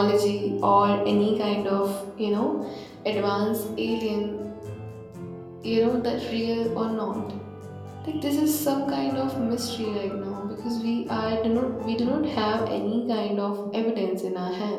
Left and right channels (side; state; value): both; identical; correlation 1.00